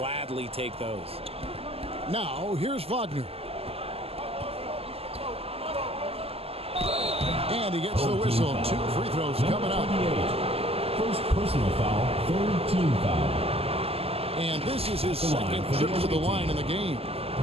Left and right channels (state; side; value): late; left; 0.29 ms